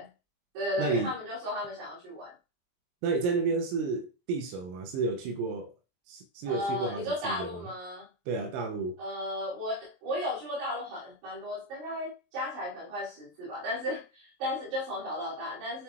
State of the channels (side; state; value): left; late; 22 ms